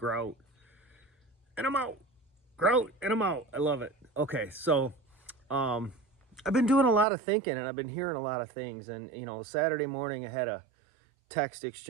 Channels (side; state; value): left; drops out; at 7.1 s